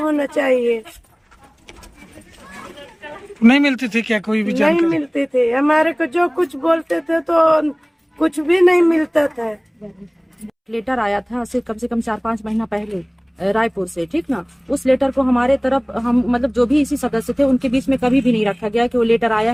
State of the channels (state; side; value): identical; both; correlation 1.00